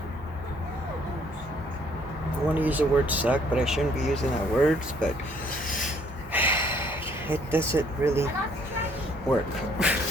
I want to use the word suck, but I shouldn't be using that words, but it doesn't really work.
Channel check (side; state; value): both; normal; correlation 0.63